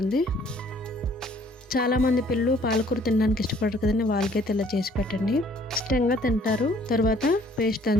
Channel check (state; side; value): normal; both; correlation 0.59